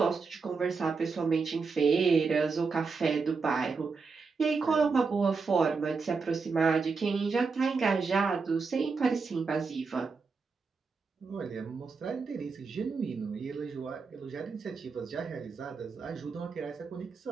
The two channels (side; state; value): left; quieter; 4.8 dB